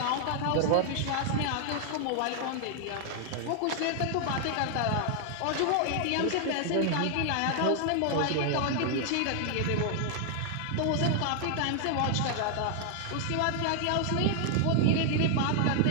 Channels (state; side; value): different; both; correlation 0.00